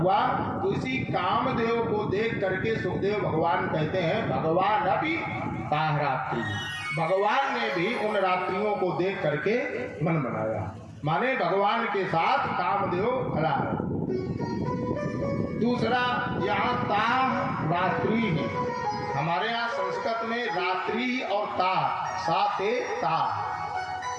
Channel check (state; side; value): identical; both; correlation 1.00